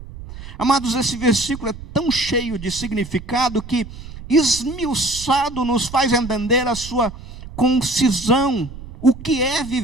Amados, esse versículo é tão cheio de significado que, esmiuçado, nos faz entender a sua concisão. O que é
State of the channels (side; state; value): right; noise; rumble, 13 dB below the sound